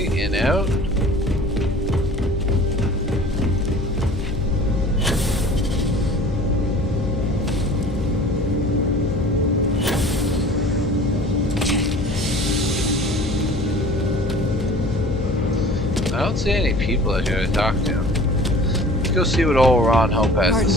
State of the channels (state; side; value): noise; left; hum, 6 dB below the sound